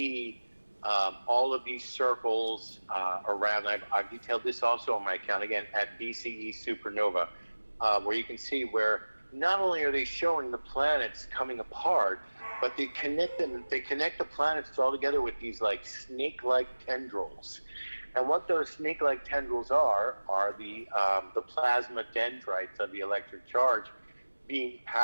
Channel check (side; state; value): both; inverted; correlation -1.00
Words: all of these circles around. I've detailed this also on my account, again, at BCE Supernova, where you can see where not only are they showing the planets coming apart, but they connect the planets all together with these like snake-like tendrils. And what those snake-like tendrils are the plasma dendrites of the electric charge being